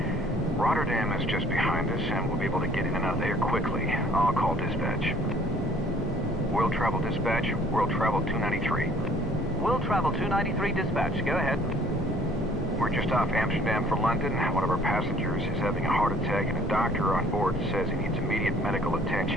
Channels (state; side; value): normal; both; correlation 0.56